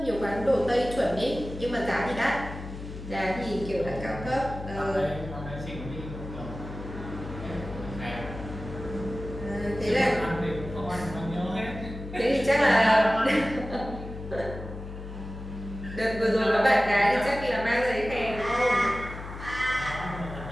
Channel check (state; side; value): noise; left; hum, 10 dB below the sound